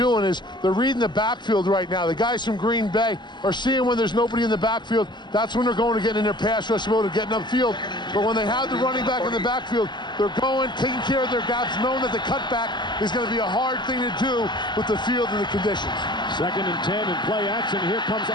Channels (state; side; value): late; right; 0.21 ms